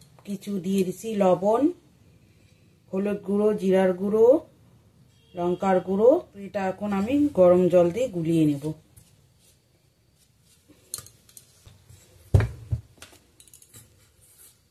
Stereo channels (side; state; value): both; identical; correlation 1.00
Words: কিছু দিয়ে দিছি, লবণ, হলুদ গুঁড়ো, জিরার গুঁড়ো, লঙ্কার গুঁড়ো। এটা এখন আমি গরম জল দিয়ে গুলিয়ে নেব।